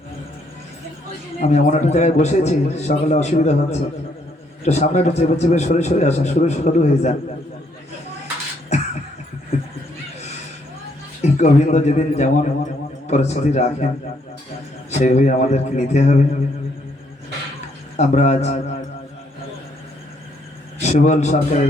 আমি এমন একটা জায়গায় বসেছি, সকালে অসুবিধা হচ্ছে, একটু সামনে একটু চেপে চেপে সরে সরে আসেন, শুরু হয়ে যান। গোবিন্দ যেদিন যেমন পরিস্থিতি রাখেন সেইভাবে আমাদেরকে নিতে হবে। আমরা আজ সুবল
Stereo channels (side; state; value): both; normal; correlation 0.71